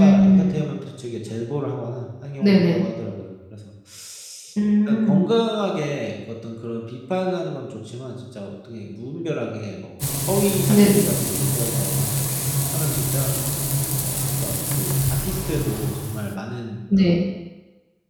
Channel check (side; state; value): both; identical; correlation 1.00